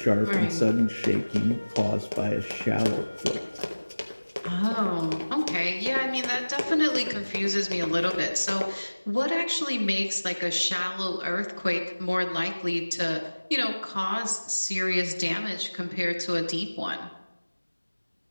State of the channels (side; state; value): both; inverted; correlation -1.00